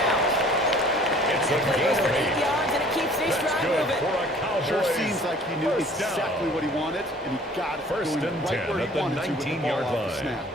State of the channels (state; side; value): normal; both; correlation 0.52